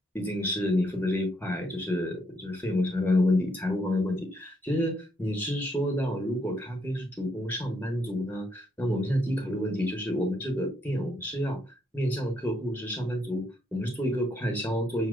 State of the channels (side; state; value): both; normal; correlation 0.74